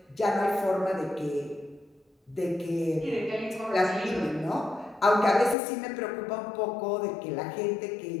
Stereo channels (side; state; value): right; drops out; at 5.6 s